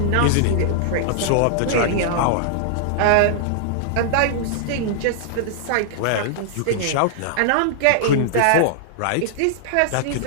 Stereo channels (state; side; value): different; both; correlation -0.01